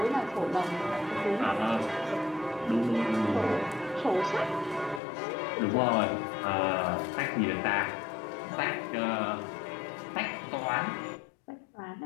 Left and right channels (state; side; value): drops out; right; at 5.0 s